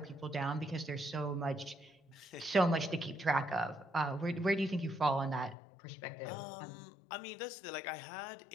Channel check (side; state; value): right; drops out; at 5.6 s